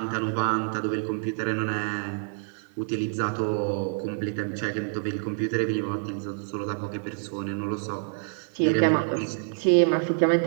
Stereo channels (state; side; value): silent; left; 60 dB below the other